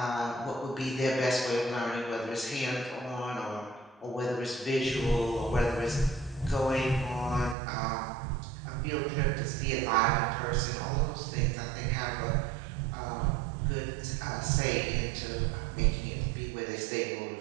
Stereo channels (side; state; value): left; drops out; at 7.6 s